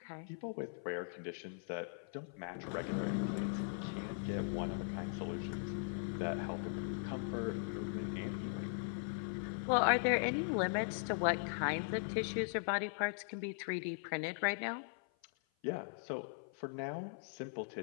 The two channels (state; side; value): silent; right; 51 dB below the other